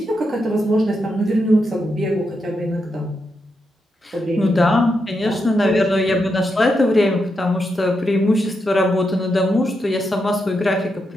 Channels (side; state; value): both; normal; correlation 0.84